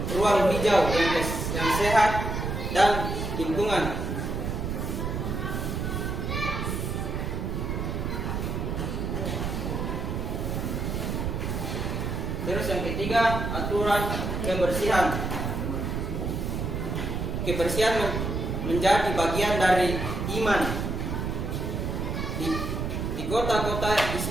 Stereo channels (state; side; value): noise; right; rumble, 2 dB below the sound